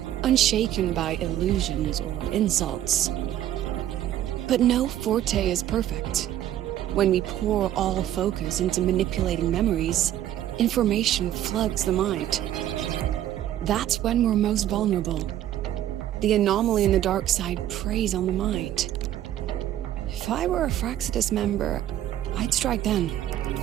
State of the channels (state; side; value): quieter; left; 12.1 dB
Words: unshaken by illusions or insults. But no forte is perfect. When we pour all focus into manipulating memories, information floods the mind. That's when we're most vulnerable. The anomaly in the dark side preys on the mind. If I were a Fraxidus member, I'd strike then.